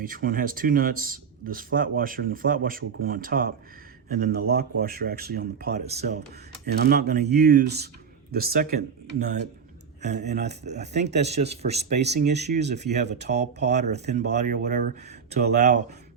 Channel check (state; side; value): quieter; left; 6.5 dB